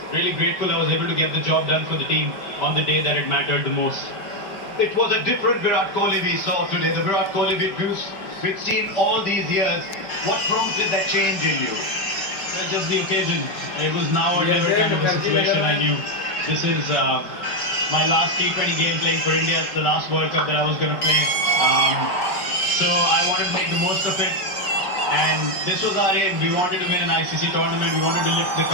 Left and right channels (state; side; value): late; right; 5.1 ms